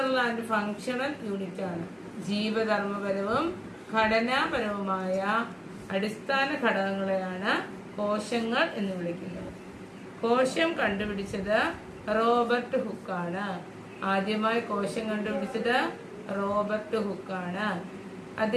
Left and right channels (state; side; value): identical; both; correlation 1.00